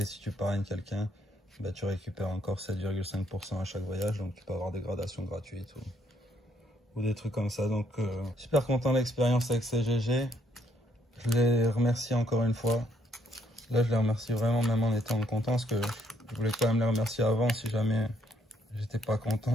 si tu parraines quelqu'un, bah, tu récupères encore 7,5% à chaque voyage, donc tu peux avoir des gradations gratuites ou des trucs comme ça. Donc super content de l'expérience avec CGG. Je les remercie encore une fois. Là je les remercie vraiment même en étant content, parce que je voulais quand même les remercier avant si jamais j'étais pas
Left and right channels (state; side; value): normal; both; correlation 0.70